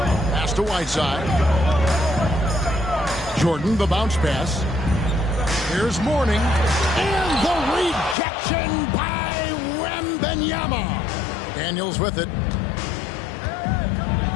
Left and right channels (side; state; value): right; drops out; at 8.2 s